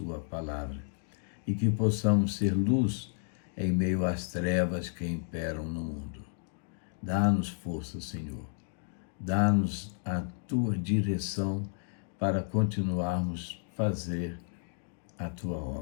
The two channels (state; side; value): silent; right; digital silence